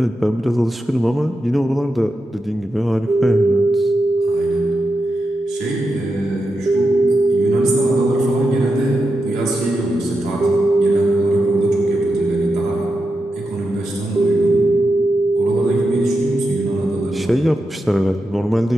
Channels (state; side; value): normal; both; correlation 0.88